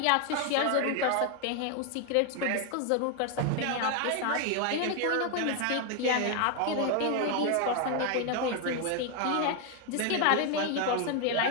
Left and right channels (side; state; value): both; different; correlation 0.01